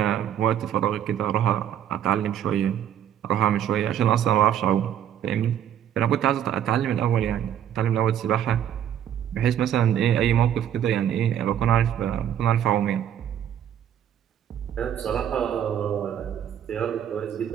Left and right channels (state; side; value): quieter; left; 10.0 dB